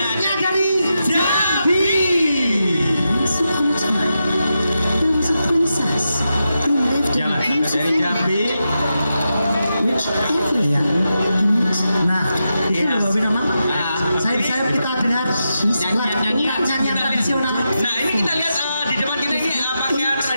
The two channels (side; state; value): both; inverted; correlation -0.88